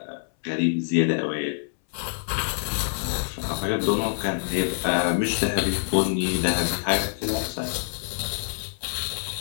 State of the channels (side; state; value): right; silent; 61 dB below the other